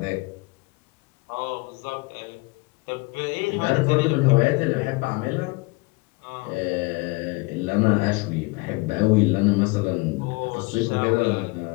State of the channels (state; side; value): quieter; right; 26.2 dB